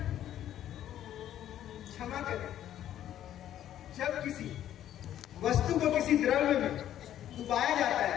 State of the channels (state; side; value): quieter; right; 11.5 dB